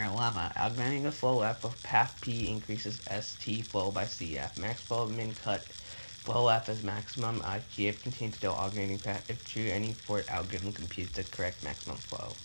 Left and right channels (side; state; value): both; inverted; correlation -1.00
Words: Augmenting the flow F of path P increases ST flow by CF. Max flow, min cut flow F is maximum. GF contains no augmenting path. If true, any port algorithm computes the correct maximum flow.